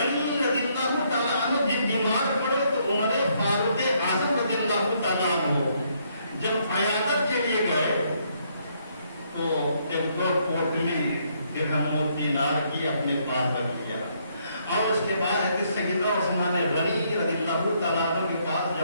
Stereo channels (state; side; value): inverted; both; correlation -0.71